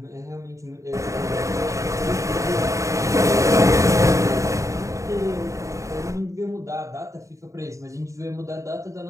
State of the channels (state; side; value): late; left; 0.15 ms